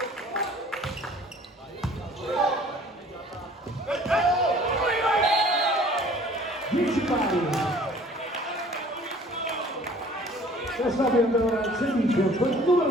Adesso abbiamo ora il servizio con il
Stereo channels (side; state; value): both; normal; correlation 0.52